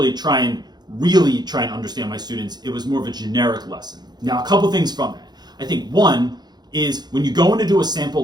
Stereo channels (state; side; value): late; left; 0.20 ms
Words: try and understand my students. It was more of a generic lesson. Now, a couple things from that. I think one is when you go in to do a